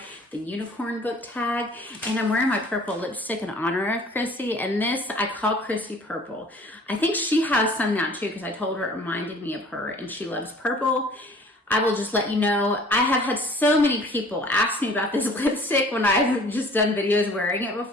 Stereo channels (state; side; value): normal; both; correlation 0.50